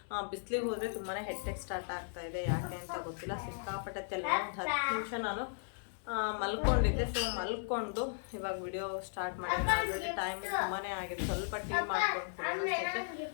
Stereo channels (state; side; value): silent; right; digital silence